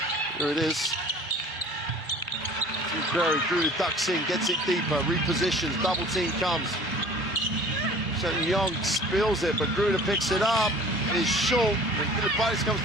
Here it is. Gruder ducks in, gets it deeper, repositions, double team comes. Young spills it, but Gruder picks it up. It is short, and Philippidis comes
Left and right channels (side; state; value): both; normal; correlation 0.47